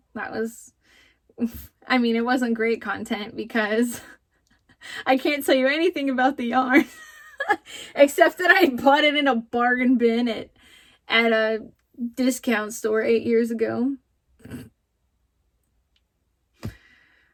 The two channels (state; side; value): identical; both; correlation 1.00